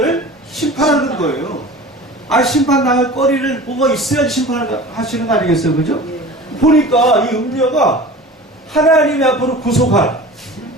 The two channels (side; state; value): both; normal; correlation 0.38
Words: 심판하는 거예요. 심판당할 거리를 뭐가 있어야지 심판을 하시는 거 아니겠어요? 그죠? 보니까 이 음녀가 하나님이 앞으로 구속할,